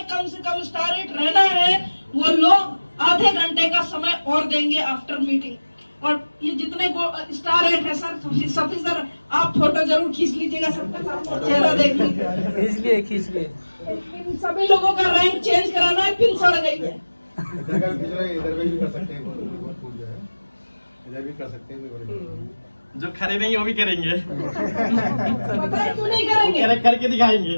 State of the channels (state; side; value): inverted; both; correlation -1.00